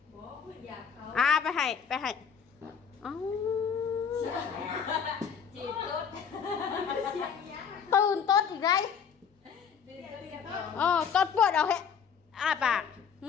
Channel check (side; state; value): right; quieter; 6.9 dB